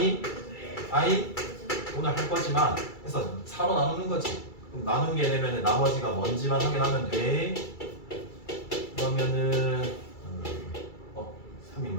오늘 할 거지만 그래서 4로 나누는 거지. 그럼 나누게 되면 나머지가 뭔지만 확인하면 돼. 그러면은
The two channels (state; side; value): late; right; 2.3 ms